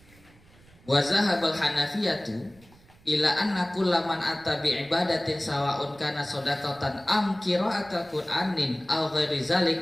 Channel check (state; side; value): noise; right; rumble, 27 dB below the sound